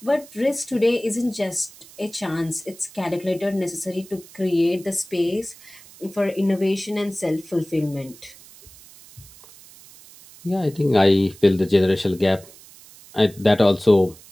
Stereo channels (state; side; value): noise; right; hiss, 22 dB below the sound